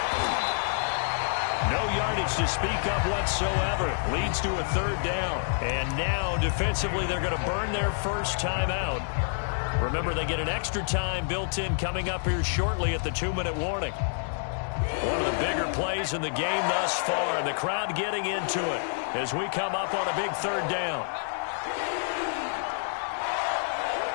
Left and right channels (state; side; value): silent; right; digital silence